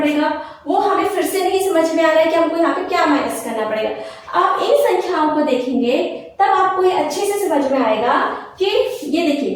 वो हमें फिर से नहीं समझ में आ रहा है कि हमको यहाँ पे क्या माइनस करना पड़ेगा। आप इन संख्याओं को देखेंगे तब आपको ये अच्छे से समझ में आएगा कि ये देखिए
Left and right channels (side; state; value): both; identical; correlation 1.00